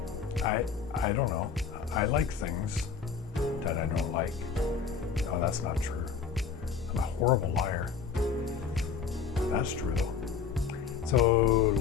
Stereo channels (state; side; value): quieter; right; 6.2 dB